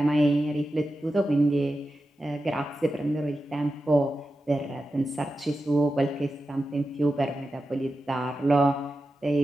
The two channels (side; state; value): both; normal; correlation 0.91